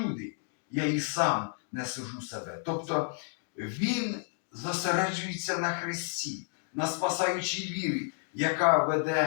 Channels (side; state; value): right; silent; 57 dB below the other